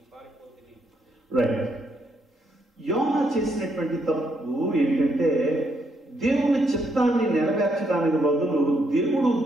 పారిపోతిని. రైట్. యోనా చేసినటువంటి తప్పు ఏంటంటే, దేవుని చిత్తాన్ని నెరవేర్చడానికి బదులు దేవుడు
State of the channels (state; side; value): normal; both; correlation 0.75